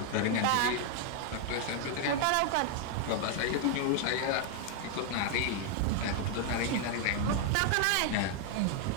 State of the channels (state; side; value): different; both; correlation 0.00